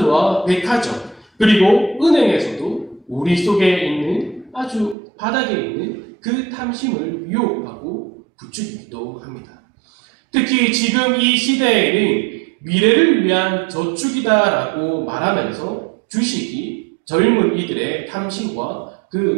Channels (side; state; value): left; drops out; at 5.0 s